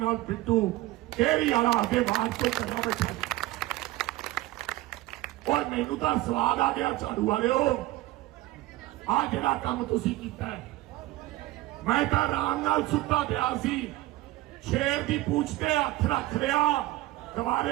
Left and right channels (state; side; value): quieter; left; 17.6 dB